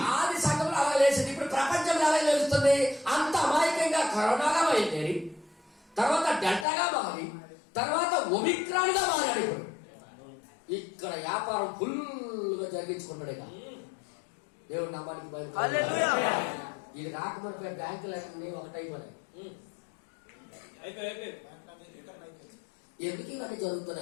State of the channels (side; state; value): right; drops out; at 6.7 s